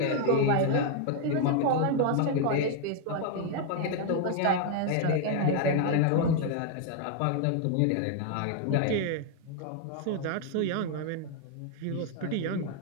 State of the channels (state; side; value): different; both; correlation 0.00